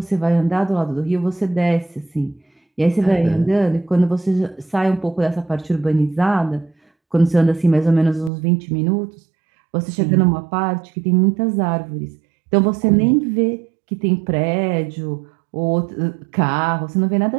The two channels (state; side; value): drops out; left; at 8.3 s